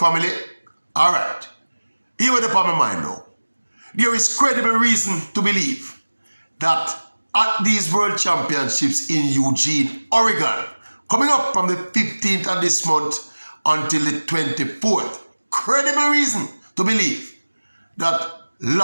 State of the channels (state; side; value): inverted; both; correlation -1.00